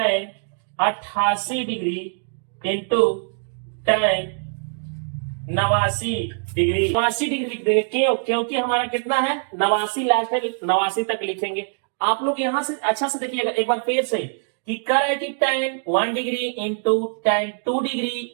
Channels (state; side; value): silent; left; digital silence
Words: 88 degree into tan 89 degree. 89 degree लिख देंगे। क्यों? क्योंकि हमारा कितना है? 89 लास्ट है, 89 तक लिखेंगे। आप लोग यहां से अच्छा से देखिएगा एक बार फिर से कि कर है कि tan 1 degree into tan 2 degree